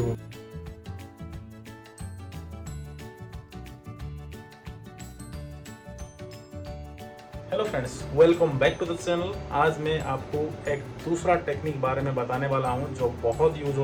Hello friends, welcome back to the channel. आज मैं आपको एक दूसरा टेक्निक बारे में बताने वाला हूँ जो बहुत यूज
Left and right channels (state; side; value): identical; both; correlation 1.00